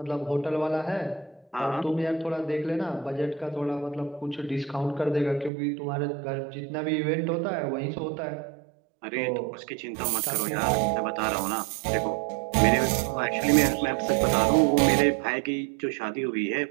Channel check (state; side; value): drops out; left; at 5.5 s